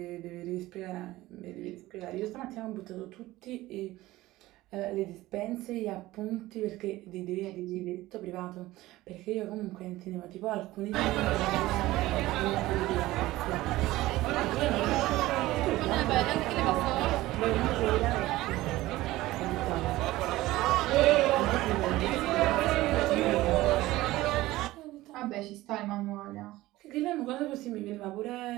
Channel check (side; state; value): left; quieter; 17.5 dB